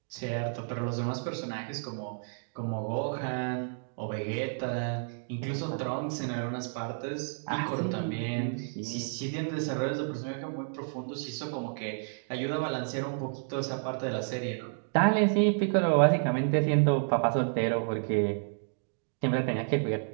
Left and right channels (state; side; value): silent; left; digital silence